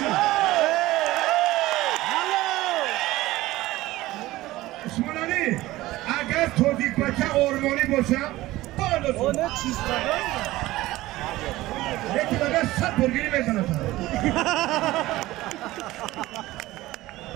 Osmanali, agar Tojikbacha o'rmoni bo'lsa, Onu çizmeden mi? lekin agar sat burgini mesanata.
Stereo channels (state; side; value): quieter; left; 17.5 dB